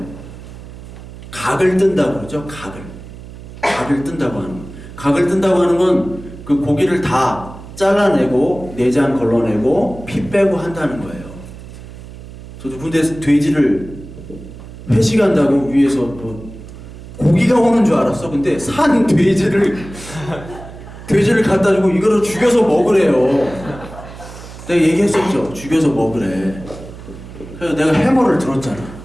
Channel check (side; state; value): right; noise; hum, 15 dB below the sound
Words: 각을 뜬다고 그러죠. 각을 뜬다고 하는 거. 각을 뜬다고 하는 건 그 고기를 다 잘라내고 내장 걸러내고 피 빼고 한다는 거예요. 저도 군대에서 돼지를 회식한다고 위에서 뭐 고기가 오는 줄 알았어. 근데 산 돼지를 갖다 주고 이거를 죽여서 먹으래요. 내가 얘기했었죠. 죽여서 먹으래. 그래서 내가 해머를 들었잖아.